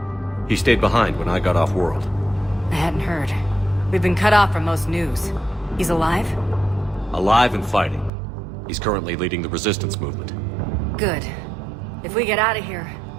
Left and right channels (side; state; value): left; drops out; at 8.1 s